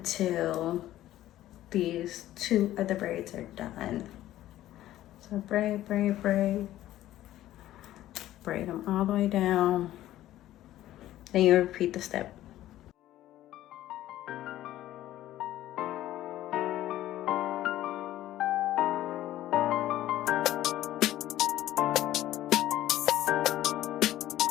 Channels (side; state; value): right; quieter; 14.0 dB